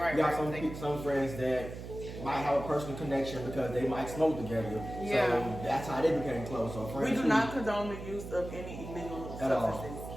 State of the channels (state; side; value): noise; right; hum, 10 dB below the sound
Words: You got some friends that might have a personal connection because they might smoke together. Yeah. So that's how they became close. So friends We do not condone the use of any illegal substances.